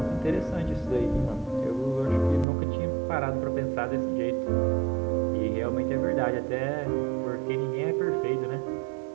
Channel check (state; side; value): drops out; left; at 2.5 s